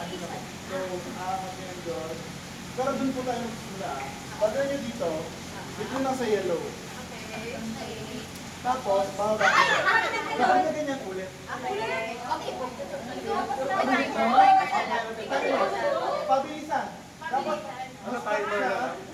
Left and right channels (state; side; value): identical; both; correlation 1.00